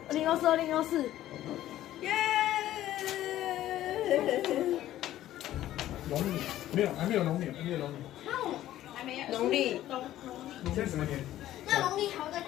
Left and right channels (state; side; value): quieter; right; 13.5 dB